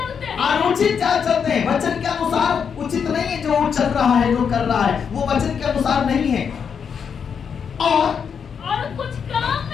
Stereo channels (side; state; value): right; quieter; 6.9 dB